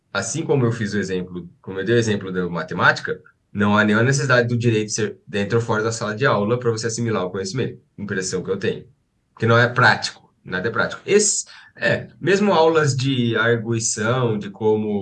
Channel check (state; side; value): identical; both; correlation 1.00